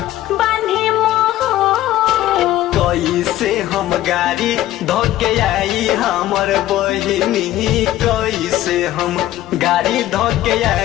बांधे मोह। कैसे हम गाड़ी धोके आई हमर बहिनी, कैसे हम गाड़ी धोके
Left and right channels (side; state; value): right; quieter; 14.2 dB